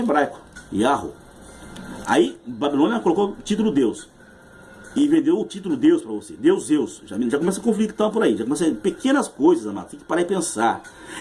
Yahweh. Aí Babilônia colocou o título Deus. E vendeu o título Deus para você. Deus, Zeus. Já começa a conflitar por aí. Já começa pequenas coisas, amado. Tem que parar e pensar.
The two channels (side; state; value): both; identical; correlation 1.00